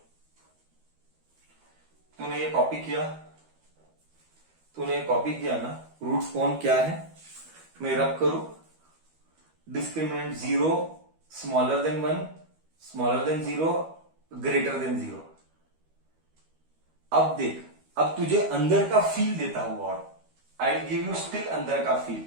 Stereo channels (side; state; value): left; late; 13 ms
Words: तूने ये कॉपी किया ना. रूट कौन क्या है मैं रब करूं. Discriminant 0 smaller than 1, smaller than 0, greater than 0. अब देख, अब तुझे अंदर का फील देता हूं और I will give you still अंदर का फील,